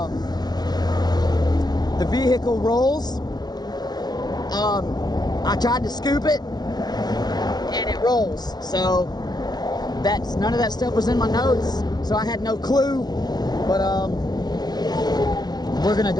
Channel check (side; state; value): right; late; 0.19 ms